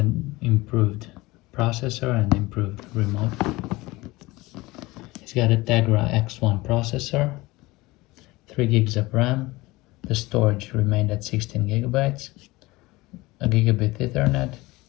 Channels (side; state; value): right; quieter; 20.9 dB